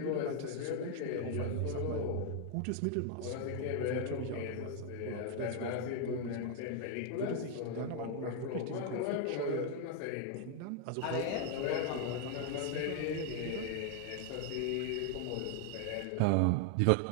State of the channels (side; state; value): both; different; correlation 0.00